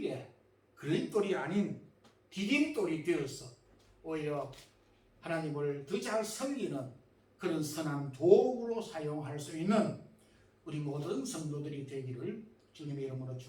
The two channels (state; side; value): identical; both; correlation 1.00